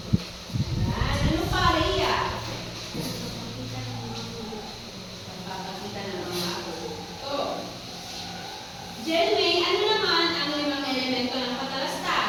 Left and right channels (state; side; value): identical; both; correlation 1.00